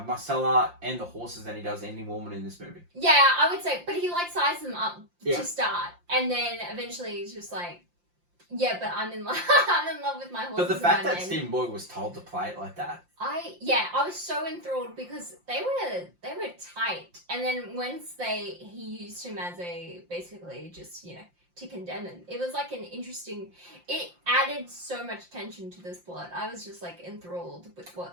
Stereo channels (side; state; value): left; late; 5.7 ms